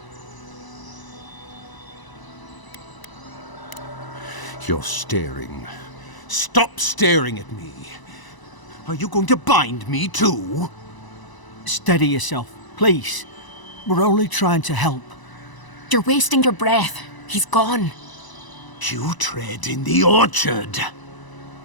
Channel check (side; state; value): right; late; 1.0 ms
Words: You're staring. Stop staring at me. Are you going to bind me too? Steady yourself, please. We're only trying to help. You're wasting your breath. He's gone. You tread in the orchard.